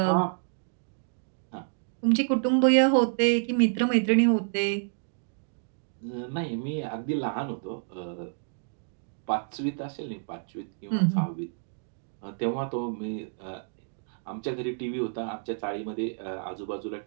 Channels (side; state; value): left; silent; digital silence